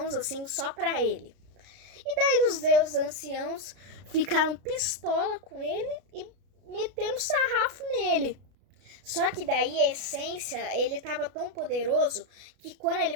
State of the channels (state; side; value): late; left; 33 ms